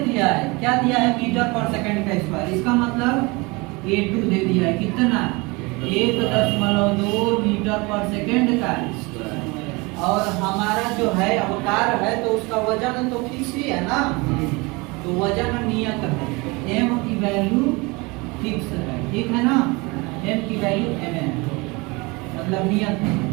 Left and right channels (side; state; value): left; quieter; 25.9 dB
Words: दिया है, क्या दिया है? मीटर पर सेकंड का स्क्वायर। इसका मतलब A2 दे दिया है कितना? 1.2 मीटर पर सेकंड का। और हमारा जो है अवकार है तो उसका वजन तो फिक्स ही है ना, तो वजन नियत है। m की वैल्यू फिक्स है, ठीक है ना। m की वैल्यू m है, मतलब नियत है।